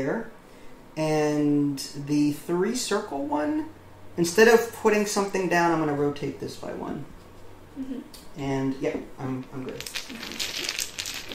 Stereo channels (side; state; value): both; identical; correlation 1.00